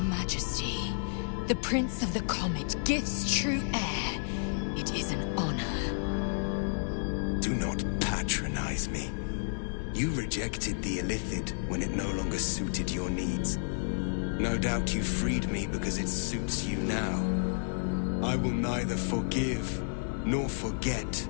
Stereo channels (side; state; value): right; silent; digital silence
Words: the Prince of the Comet gives true heir. It is an honor. Do not patronize me. You rejected the illithid when it no longer suited your needs. No doubt you freed me because it suits you now. I will neither forgive nor forget